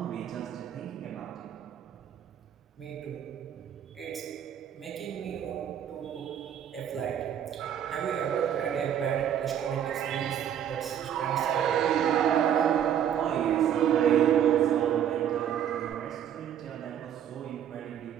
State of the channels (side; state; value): left; quieter; 9.7 dB